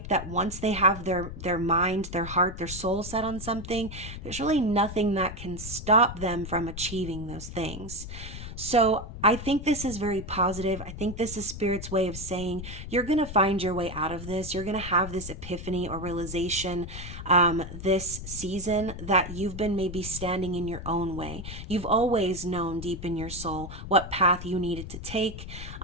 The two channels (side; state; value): left; noise; rumble, 10 dB below the sound